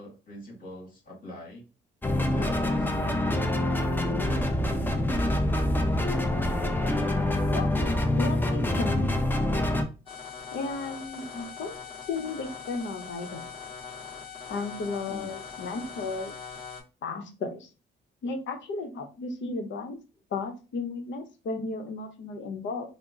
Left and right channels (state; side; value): normal; both; correlation 0.74